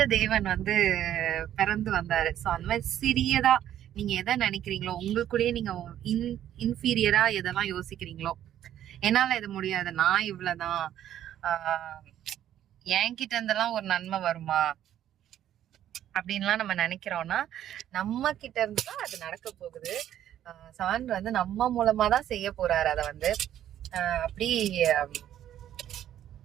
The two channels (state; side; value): quieter; left; 11.3 dB